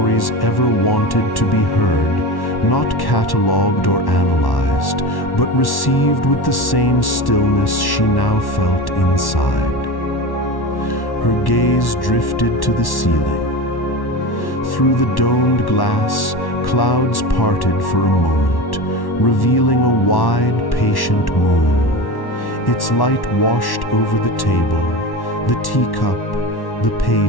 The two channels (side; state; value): right; late; 1.1 ms